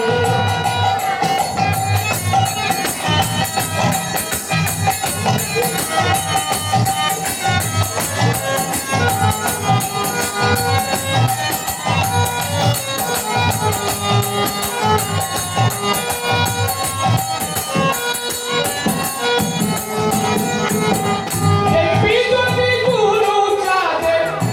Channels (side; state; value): both; identical; correlation 1.00